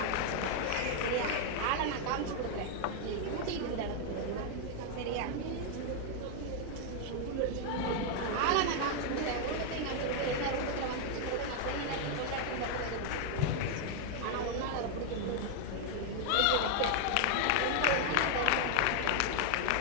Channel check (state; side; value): different; both; correlation 0.00